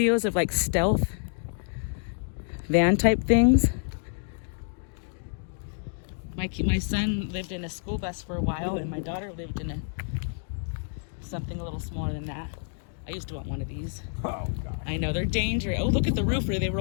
of like stealth van type things. My son lived in a school bus for a while, and my daughter lived in something a little smaller than that. I used to want one of these. Oh, God. I know, they're dangerous. Oh, look at the roof where they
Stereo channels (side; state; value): right; silent; digital silence